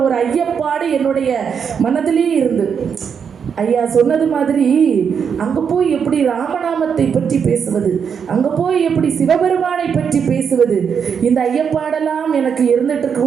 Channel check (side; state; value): left; quieter; 7.0 dB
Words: ஒரு ஐயப்பாடு என்னுடைய மனதிலேயே இருந்து, ஐயா சொன்னது மாதிரி அங்க போய் எப்படி ராமநாமத்தை பற்றி பேசுவது, அங்க போய் எப்படி சிவபெருமானை பற்றி பேசுவது, இந்த ஐயப்பாடெல்லாம் எனக்கு இருந்துட்டு